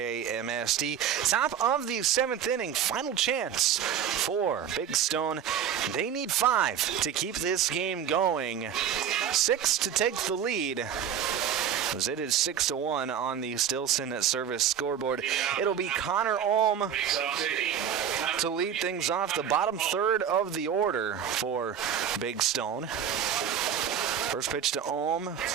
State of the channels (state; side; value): quieter; left; 8.8 dB